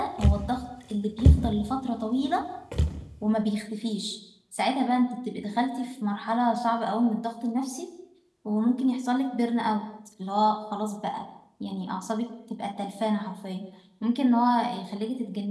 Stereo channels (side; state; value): both; identical; correlation 1.00